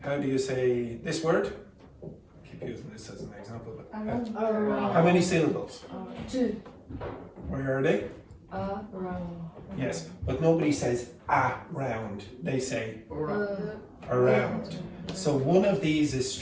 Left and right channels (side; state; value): both; identical; correlation 1.00